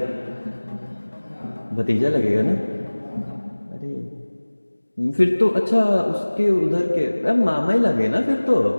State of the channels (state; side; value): inverted; both; correlation -1.00